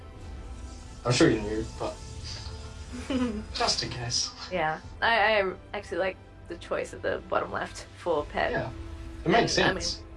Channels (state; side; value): identical; both; correlation 1.00